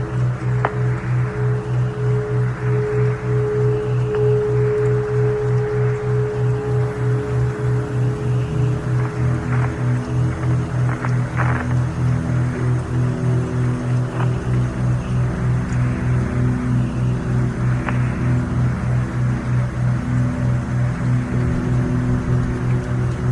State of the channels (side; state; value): both; identical; correlation 1.00